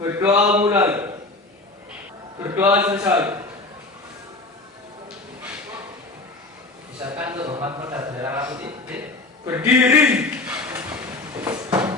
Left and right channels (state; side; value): quieter; right; 3.1 dB